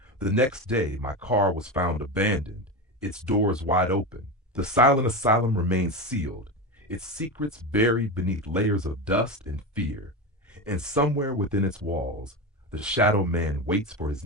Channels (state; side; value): normal; both; correlation 0.19